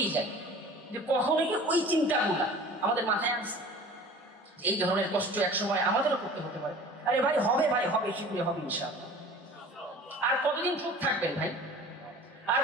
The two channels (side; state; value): both; normal; correlation 0.43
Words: যাই, যে কখনো কি ওই চিন্তাগুলা আমাদের মাথায় আসছে এই ধরনের কষ্ট একসময় আমাদেরও করতে হতে পারে। আরে ভাই হবে, ভাই হবে, শীঘ্রই হবে ইনশাআল্লাহ। আর কতদিন চুপ থাকবেন ভাই? আর